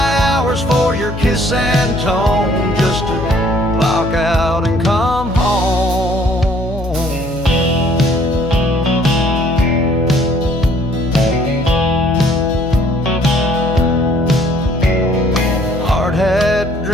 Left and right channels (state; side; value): noise; left; hum, 9 dB below the sound